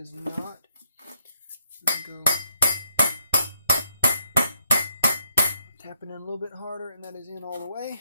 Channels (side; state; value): both; inverted; correlation -0.75